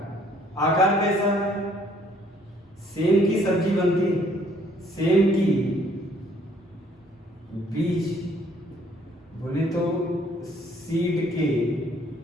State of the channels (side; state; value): both; normal; correlation 0.62